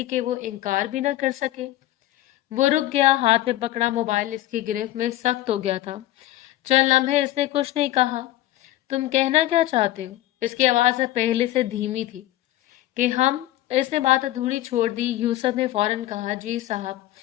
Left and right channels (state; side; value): quieter; right; 15.3 dB